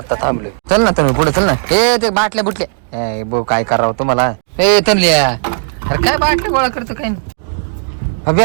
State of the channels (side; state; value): left; silent; digital silence